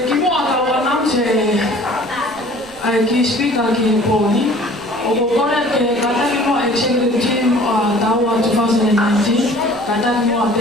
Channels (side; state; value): left; noise; rumble, 26 dB below the sound